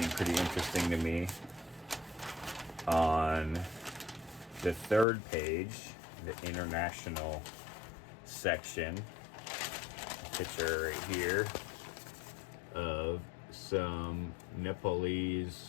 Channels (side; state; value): right; drops out; at 5.1 s